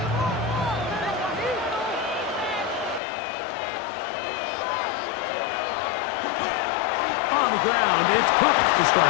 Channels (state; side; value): drops out; right; at 3.0 s